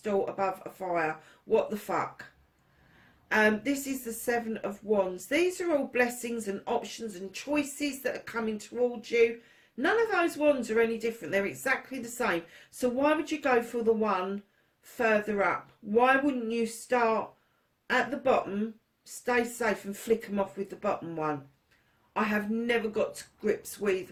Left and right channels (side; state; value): both; identical; correlation 1.00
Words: above a fire. What the fuck? This is the Seven of Wands. These are all blessings and options and choices that are coming towards you. None of those wands are any different. They're exactly the same. So why would you go for the one further up? Why wouldn't you start at the bottom, stay safe, and flick them off with the bottom one? I have never got to grips with